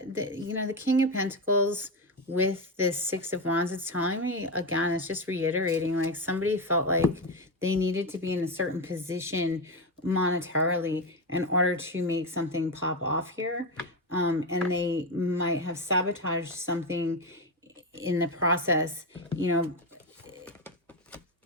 the King of Pentacles with this Six of Wands, it's telling me, again, it's just reiterating, like somebody felt like they needed to be in a certain position monetarily in order to make something pop off here. And they might have sabotaged something in the process,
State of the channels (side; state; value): both; normal; correlation 0.13